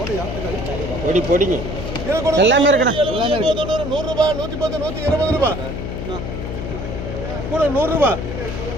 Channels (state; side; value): noise; left; hum, 6 dB below the sound